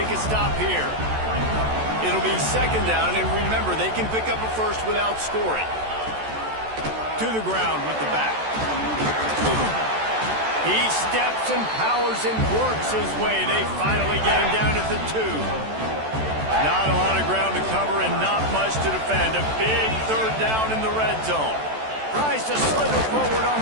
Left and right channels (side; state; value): left; late; 14 ms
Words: a stop here. It'll be 2nd down, and remember, they can pick up a first without scoring. To the ground with the back. He steps and powers and works his way. They finally get him down at the 2. Not a lot of ground to cover and not much to defend. A big 3rd down in the red zone. Tries to slither forward on